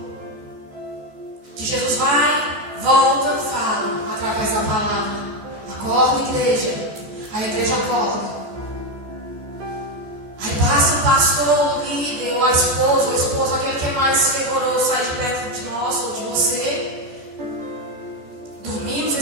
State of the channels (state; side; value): late; left; 14 ms